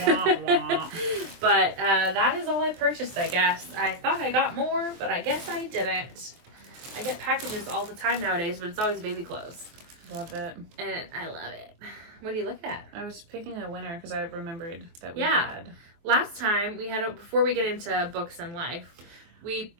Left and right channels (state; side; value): late; left; 23 ms